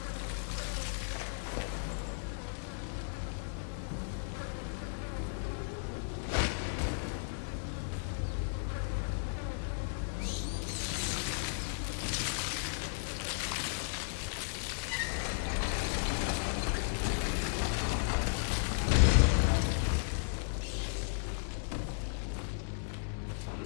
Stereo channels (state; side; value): silent; right; digital silence